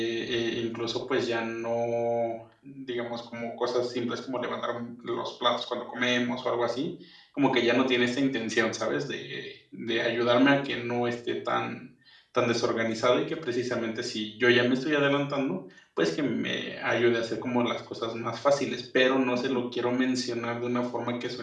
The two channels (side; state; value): both; identical; correlation 1.00